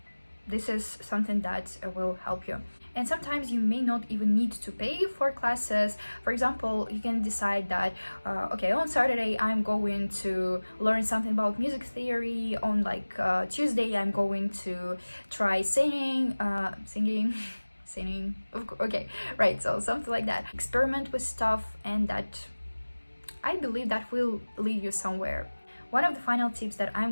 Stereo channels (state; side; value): inverted; both; correlation -1.00